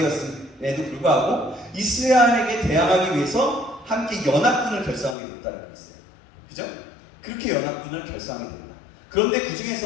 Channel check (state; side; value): drops out; right; at 5.2 s